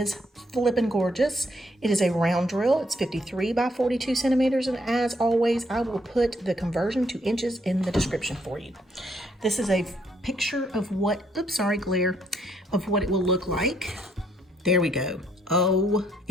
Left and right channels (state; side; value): normal; both; correlation 0.71